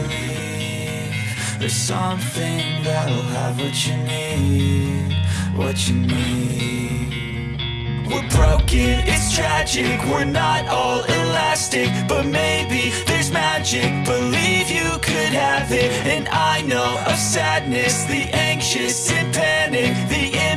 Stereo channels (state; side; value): identical; both; correlation 1.00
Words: There's something that'll have what you need, what you need. We're broken, it's tragic, we're not all elastic, but maybe there's magic. Believe you could have it, and I know of sadness, the anxious and panic, the